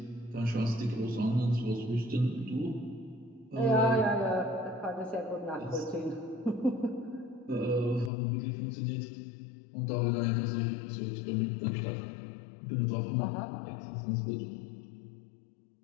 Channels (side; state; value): right; drops out; at 8.1 s